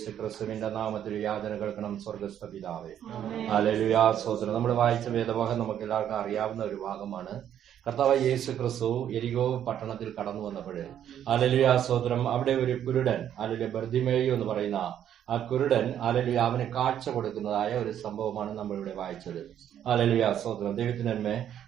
ക്രിസ്തുവിന്റെ നാമത്തിൽ യാചന കേൾക്കണം. സ്വർഗ്ഗസ്ഥ പിതാവേ. ഹല്ലേലൂയ. സ്തോത്രം. നമ്മൾ വായിച്ച വേദഭാഗം നമുക്ക് എല്ലാവർക്കും അറിയാവുന്ന ഒരു ഭാഗമാണ്. കർത്താവ് യേശു ക്രിസ്തു യെരിഹോ പട്ടണത്തിൽ കടന്നു വന്നപ്പോൾ ഹല്ലേലൂയ സ്തോത്രം, അവിടെ ഒരു കുരുടൻ ഹല്ലേലൂയ ബർത്തിമേയു എന്ന് പറയുന്ന ആ കുരുടൻ ഹല്ലേലൂയ അവന് കാഴ്ച കൊടുക്കുന്നതായ ഒരു സംഭവമാണ് നമ്മളിവിടെ വായിച്ചത്. ഹല്ലേലൂയ സ്തോത്രം. ദൈവത്തിന് നന്മ.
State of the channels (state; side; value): quieter; left; 10.1 dB